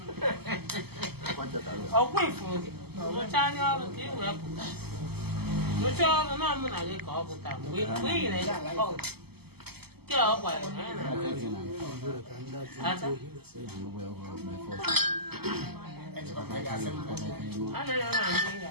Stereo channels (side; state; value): left; late; 0.96 ms